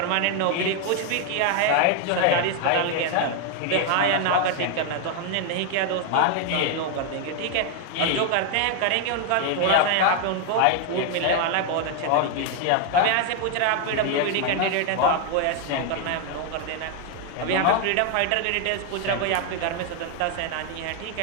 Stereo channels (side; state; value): both; different; correlation 0.00